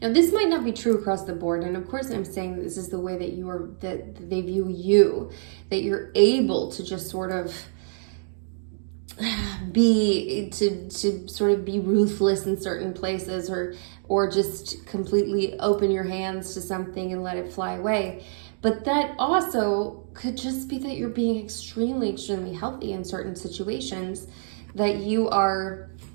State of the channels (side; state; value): left; silent; digital silence